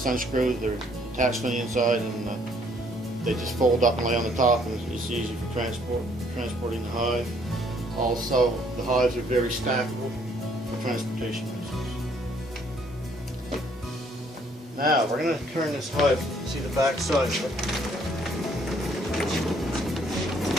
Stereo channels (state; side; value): normal; both; correlation 0.64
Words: unscrew, they're attached on the inside, and they just fold up and lay on the top, and it's easy for transporting the hive. Also, the hives are very stackable for transportation reasons. Now we're going to turn this hive, see the back side of it.